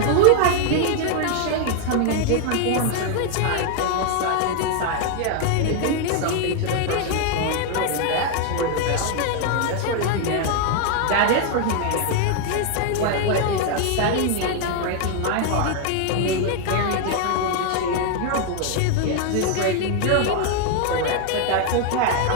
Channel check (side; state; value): both; different; correlation 0.00